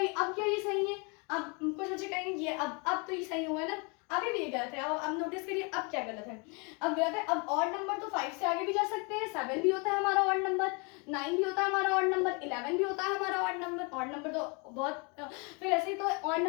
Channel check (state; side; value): quieter; right; 32.4 dB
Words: अब क्या ये सही है? अब कुछ बच्चे कहेंगे ये अब तो ये सही हुआ है ना, अभी भी ये गलत है। अब नोटिस करिए अब क्या गलत है, अब गलत है। अब ऑड नंबर तो 5 से आगे भी जा सकते हैं, 7 भी होता है हमारा ऑड नंबर, 9 भी होता है हमारा ऑड नंबर, 11 भी होता है हमारा ऑड नंबर। ऑड नंबर तो बहुत फिर ऐसे ही तो ऑड